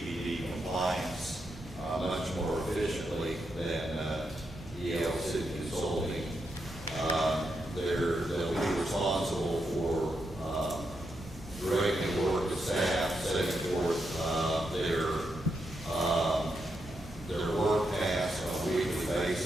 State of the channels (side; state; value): both; normal; correlation 0.83